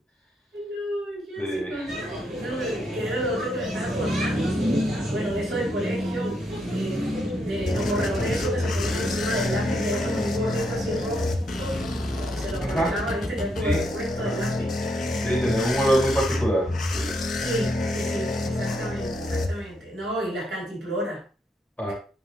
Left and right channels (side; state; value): both; normal; correlation 0.77